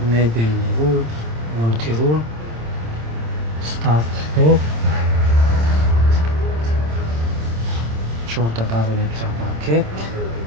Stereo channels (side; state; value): left; late; 26 ms